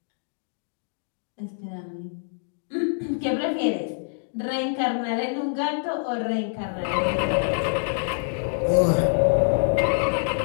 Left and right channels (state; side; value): silent; right; digital silence